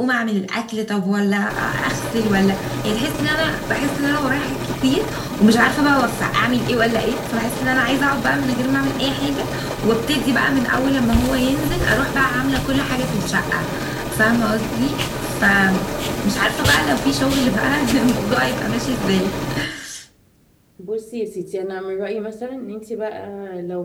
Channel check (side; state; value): both; identical; correlation 1.00